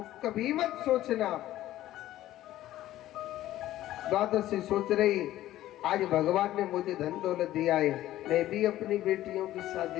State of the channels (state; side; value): quieter; right; 14.2 dB